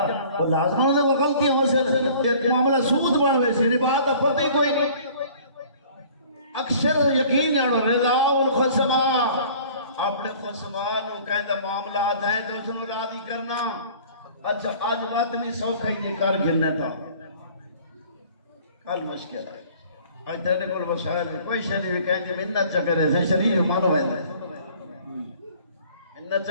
وہ لازم ہوندے وہ غلطیاں واسطے معاملہ سود بن وے سی ربا دا پتہ ہی کوئی نہیں اکثر یقین جانو رضا الخصما اپنے خصما نو کہندا معاملات ہیں تو اس نو راضی کرنا اچھا آج بات نہیں سوکھا ہی یہ کار گرنے تھا کل مشکل ہے آج تیرے کول وسائل میں کوئی شریف بھی کہیں کہ منت چکرے سے شریف مانو ہے منت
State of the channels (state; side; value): inverted; both; correlation -0.50